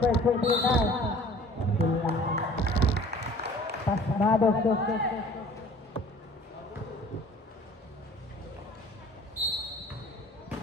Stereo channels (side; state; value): both; normal; correlation 0.49